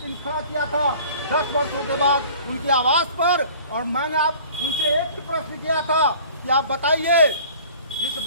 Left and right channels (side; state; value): both; inverted; correlation -0.48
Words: खड़ा किया था 10 वर्षों के बाद उनके आवास पर। और मैंने आप उनसे एक ही प्रश्न किया था कि आप बताइए, जिस